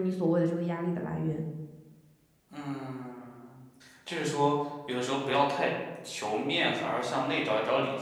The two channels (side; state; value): both; identical; correlation 1.00